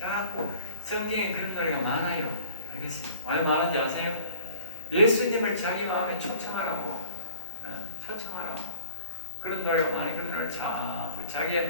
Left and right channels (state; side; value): inverted; both; correlation -0.51